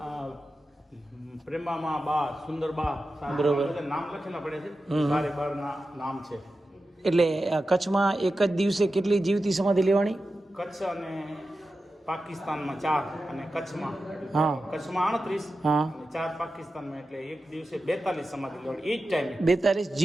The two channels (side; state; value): both; normal; correlation 0.92